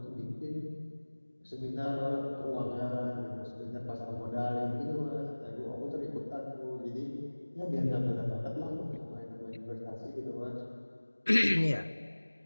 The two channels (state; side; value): inverted; both; correlation -1.00